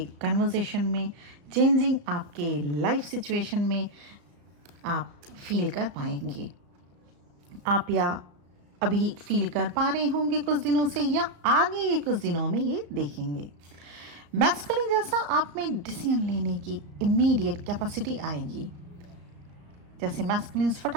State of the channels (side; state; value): left; late; 34 ms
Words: कन्वर्सेशन में, चेंजिंग आपके लाइफ सिचुएशन में आप फील कर पाएंगे. आप या अभी फील कर पा रहे होंगे कुछ दिनों से या आगे के कुछ दिनों में ये देखेंगे. मैस्कुलिन जैसा आप में डिसीजन लेने की इमीडिएट कैपेसिटी आएगी. जैसे मैस्कुलिन्स